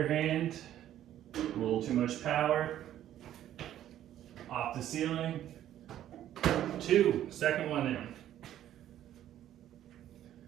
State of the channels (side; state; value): left; quieter; 11.9 dB